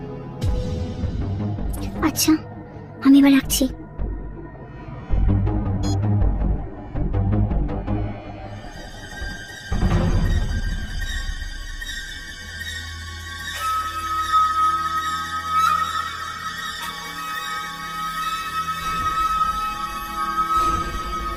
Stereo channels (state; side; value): identical; both; correlation 1.00